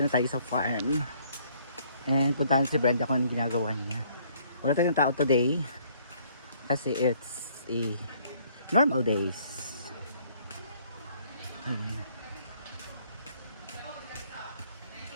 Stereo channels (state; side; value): inverted; both; correlation -0.63